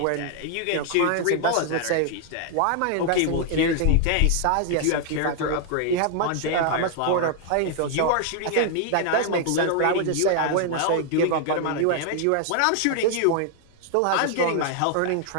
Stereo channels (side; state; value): both; different; correlation 0.00